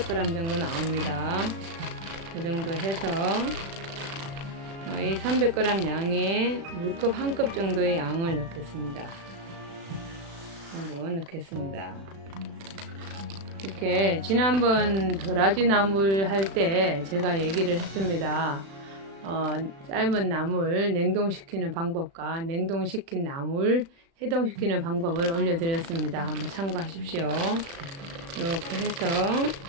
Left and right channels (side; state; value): left; late; 36 ms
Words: 정도 나옵니다. 그 정도 해서 이 300g 양에 물컵 1컵 정도의 양을 넣겠습니다. 넣겠습니다. 이렇게 지난번 도라지 나물 할 때 제가 얘기를 했습니다. 삶은 나물 냉동시키는 방법과 냉동시킨 나물 해동시키는 방법을 올려드렸습니다. 한번 참고하십시오. 이렇게 해서